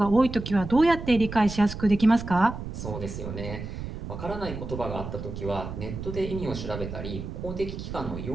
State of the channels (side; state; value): right; noise; rumble, 8 dB below the sound